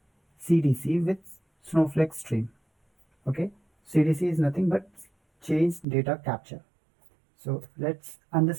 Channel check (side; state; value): left; drops out; at 5.9 s